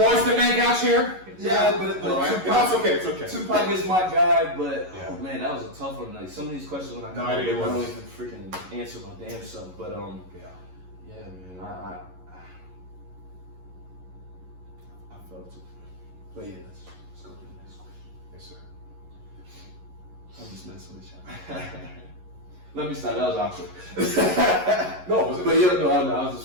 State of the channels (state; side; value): late; left; 11 ms